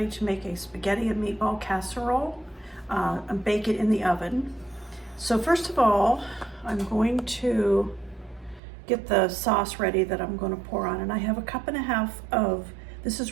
to make a spaghetti and meatball casserole and bake it in the oven. So first of all, I'm going to get the sauce ready that I'm going to pour on, and I have a cup and a half of, this is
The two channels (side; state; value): left; drops out; at 8.6 s